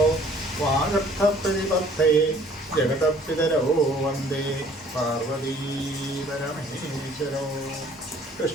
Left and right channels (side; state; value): both; normal; correlation 0.56